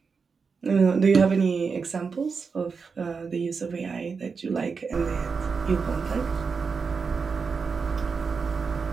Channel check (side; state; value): left; quieter; 5.2 dB